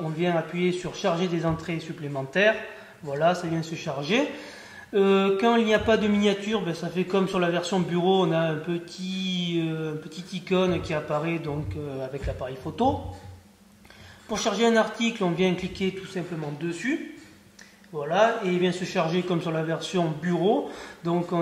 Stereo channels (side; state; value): both; identical; correlation 1.00